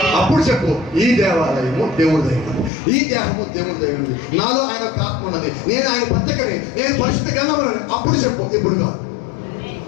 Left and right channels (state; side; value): drops out; right; at 2.7 s